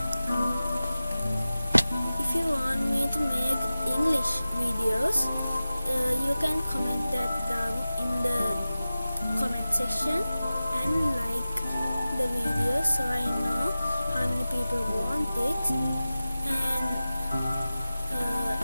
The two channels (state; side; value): inverted; both; correlation -0.95